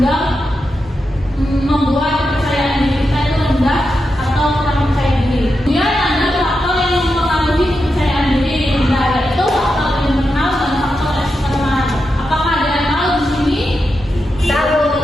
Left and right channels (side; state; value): both; normal; correlation 0.87